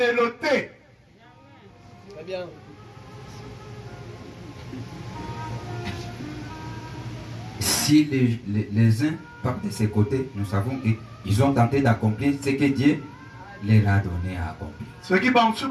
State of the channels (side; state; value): both; identical; correlation 1.00